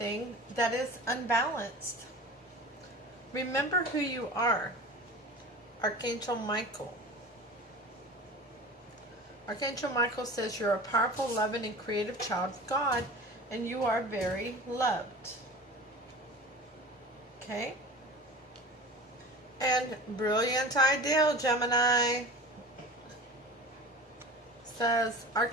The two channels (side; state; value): both; normal; correlation 0.36